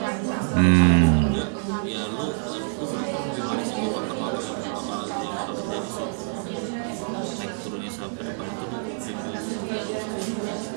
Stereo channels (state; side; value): silent; left; 61 dB below the other